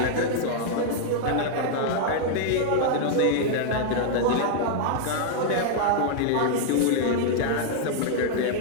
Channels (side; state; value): both; different; correlation -0.01